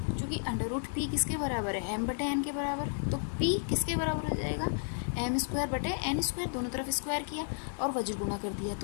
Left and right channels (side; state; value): right; silent; digital silence